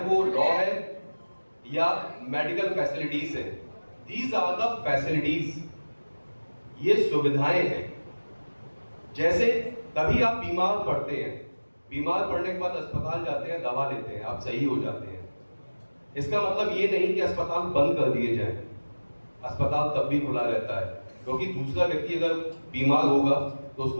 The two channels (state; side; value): inverted; both; correlation -1.00